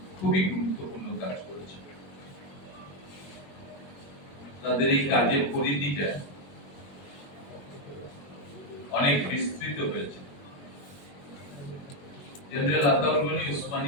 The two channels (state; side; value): late; right; 21 ms